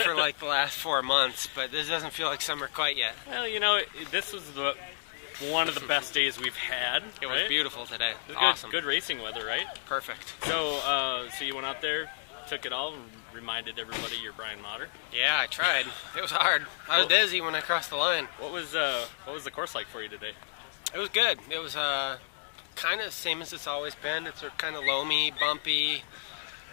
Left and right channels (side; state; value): right; silent; digital silence